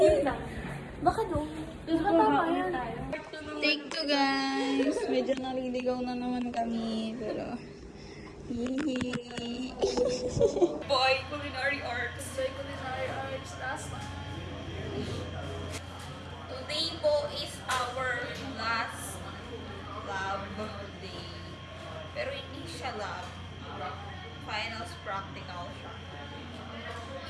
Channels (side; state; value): both; identical; correlation 1.00